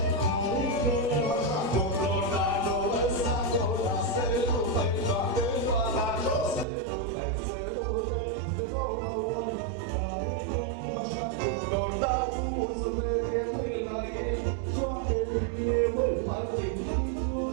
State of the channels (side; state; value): left; drops out; at 6.7 s